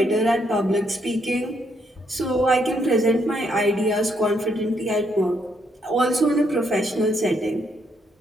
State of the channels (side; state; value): both; normal; correlation 0.74